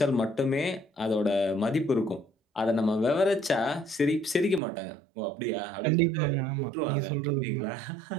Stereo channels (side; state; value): left; drops out; at 4.6 s